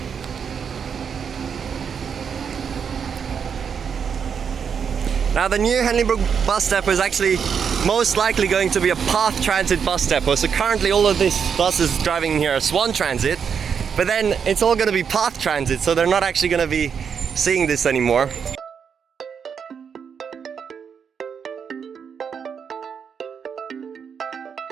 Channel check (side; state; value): left; quieter; 6.9 dB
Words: Now the new Henley Brook Bus Depot is actually most likely going to be a Perth transit bus depot. So currently all of these buses driving here are Swan Transit, but then it's all going to be Perth Transit, so they're not actually going to be seeing this anymore.